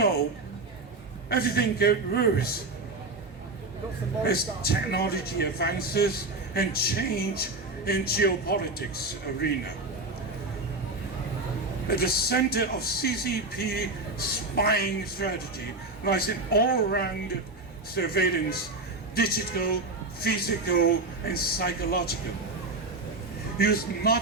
everything got worse as technology advances and change in geopolitics arena. At the center of CCP spying strategy lies an all-round surveillance, digital, physical, and psychological, used not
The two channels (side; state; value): left; quieter; 3.1 dB